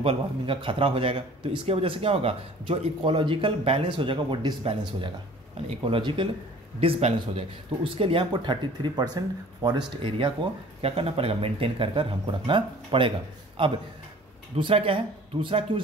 वार्मिंग का खतरा हो जाएगा। तो इसके वजह से क्या होगा, जो इकोलॉजिकल बैलेंस हो जाएगा वो डिसबैलेंस हो जाएगा, यानी इकोलॉजिकल डिसबैलेंस हो जाएगा। तो उसके लिए हमको 33% फॉरेस्ट एरिया को क्या करना पड़ेगा, मेंटेन कर कर हमको रखना पड़ेगा। अब दूसरा क्या है, दूसरा क्यों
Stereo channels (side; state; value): both; normal; correlation 0.48